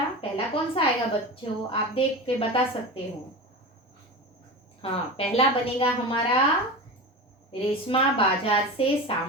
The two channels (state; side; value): normal; both; correlation 0.27